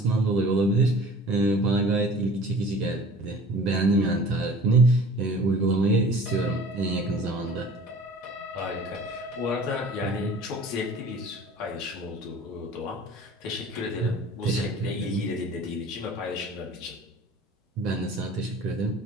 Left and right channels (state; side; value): normal; both; correlation 0.45